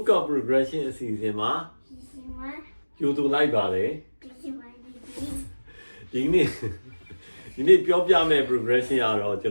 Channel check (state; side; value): inverted; both; correlation -1.00